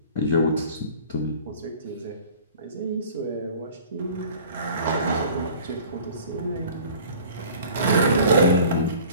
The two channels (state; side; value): inverted; both; correlation -0.46